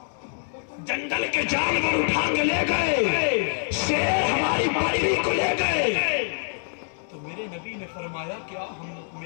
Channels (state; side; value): silent; right; digital silence